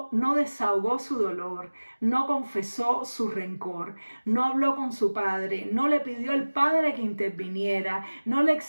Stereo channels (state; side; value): inverted; both; correlation -1.00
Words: no desahogó su dolor, no confesó su rencor, no habló con su padre, no le pidió al padre que interviniera, no le